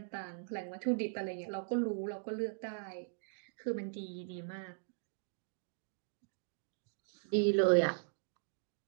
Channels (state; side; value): silent; left; digital silence